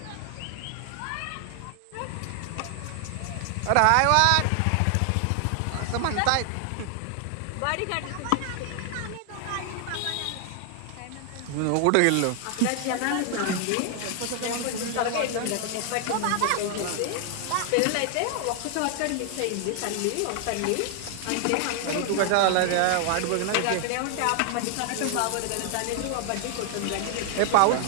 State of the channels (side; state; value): both; different; correlation 0.00